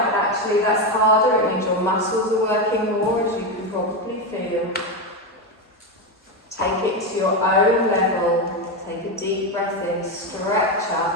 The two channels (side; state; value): both; normal; correlation 0.12